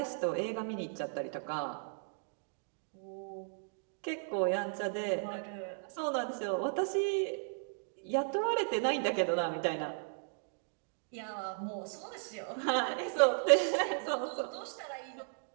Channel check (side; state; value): left; silent; digital silence